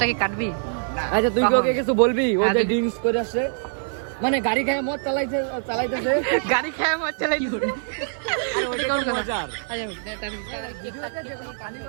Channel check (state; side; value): silent; left; 56 dB below the other